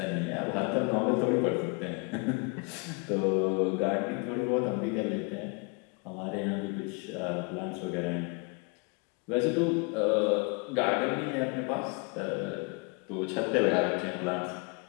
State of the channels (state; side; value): quieter; right; 32.9 dB